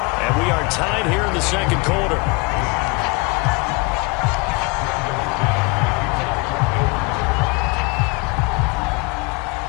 we are tied here in the 2nd quarter.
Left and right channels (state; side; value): quieter; right; 27.8 dB